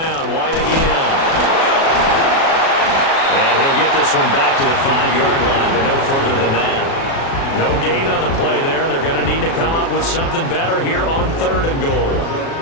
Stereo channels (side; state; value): right; late; 36 ms